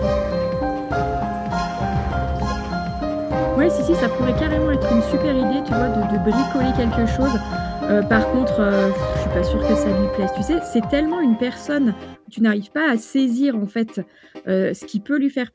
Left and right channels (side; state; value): both; identical; correlation 1.00